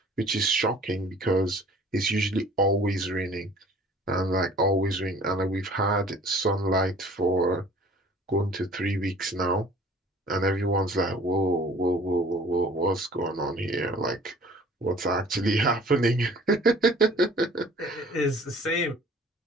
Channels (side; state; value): both; normal; correlation 0.50